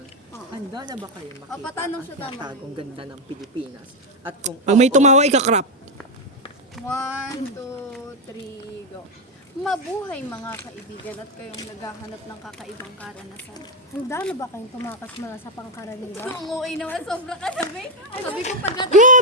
Karaniwan. Handa na ba kayo makita patanong siya tama. tagong ganda ng Pilipinas? At kung Pag may tumawa, ikakrap. 1, 2, 3, go. Mabuhay mga kaibigan at kayong naghahanap ng kakaibang karanasan. Handa na ba kayong tumakas mula sa pangkaraniwan? Ang uwi naman, sobra ka sabi. Sabi ko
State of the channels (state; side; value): normal; both; correlation 0.05